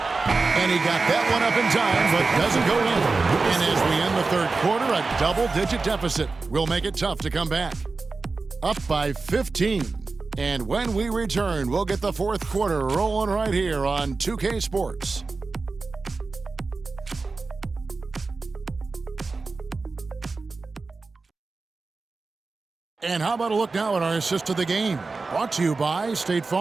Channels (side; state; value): left; quieter; 3.9 dB